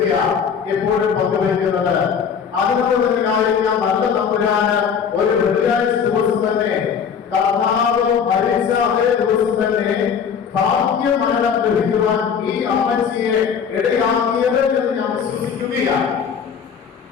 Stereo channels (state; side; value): quieter; right; 7.0 dB